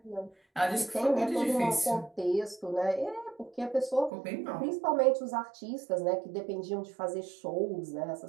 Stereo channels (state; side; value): drops out; left; at 4.1 s